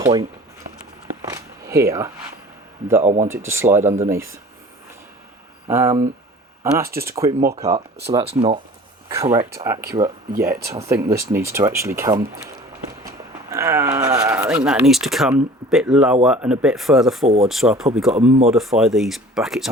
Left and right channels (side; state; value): both; normal; correlation 0.45